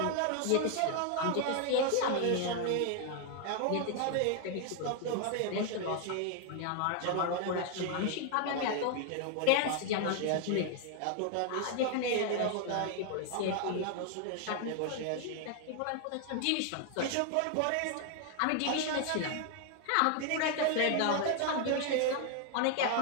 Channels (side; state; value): both; different; correlation 0.00